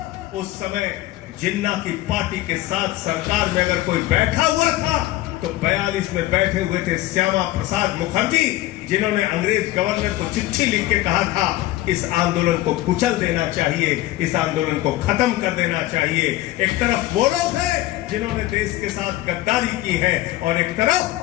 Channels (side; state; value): right; quieter; 16.2 dB